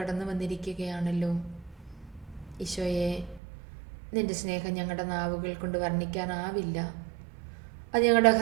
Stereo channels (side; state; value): left; drops out; at 3.4 s